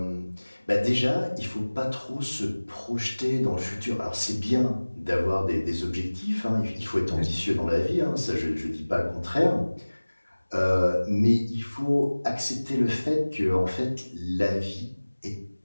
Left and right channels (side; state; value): both; inverted; correlation -1.00